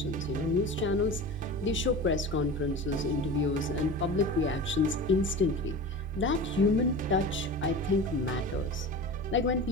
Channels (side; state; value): both; normal; correlation 0.32